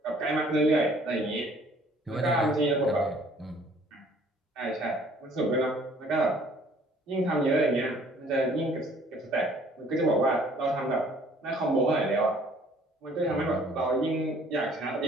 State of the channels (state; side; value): normal; both; correlation 0.57